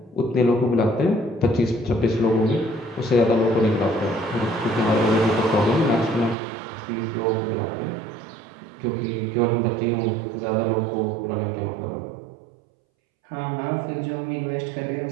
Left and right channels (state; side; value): drops out; left; at 6.4 s